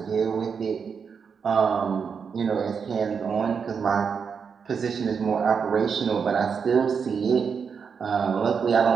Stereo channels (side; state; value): left; quieter; 6.2 dB